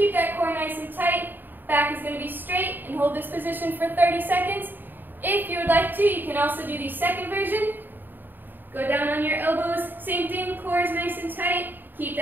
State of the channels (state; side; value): late; left; 0.092 ms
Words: that core nice and tight. Back is going to be straight, and hold this position for 30 seconds. If you would like to, you can also do the second version. Go down on your elbows, same thing, core is nice and tight. Keep